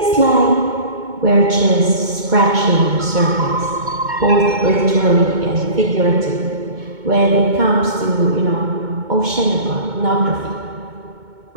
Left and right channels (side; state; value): left; late; 2.2 ms